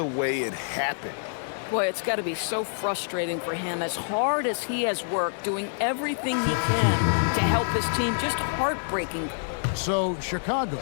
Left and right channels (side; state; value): right; silent; 60 dB below the other